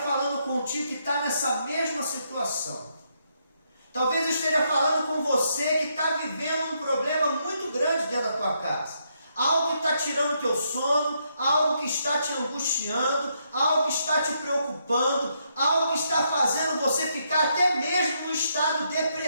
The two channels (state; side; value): inverted; both; correlation -0.77